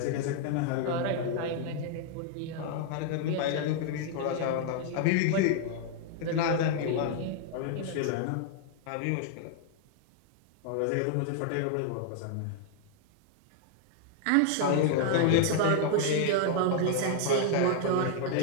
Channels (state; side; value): different; both; correlation 0.00